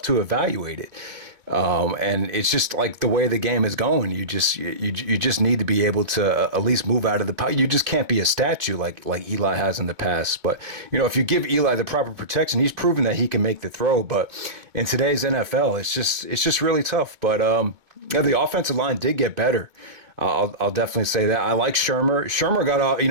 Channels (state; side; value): late; left; 2.2 ms